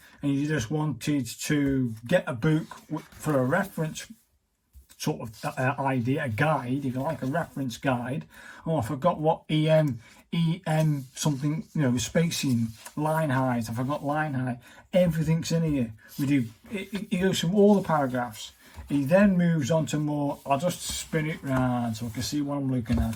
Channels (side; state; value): both; identical; correlation 1.00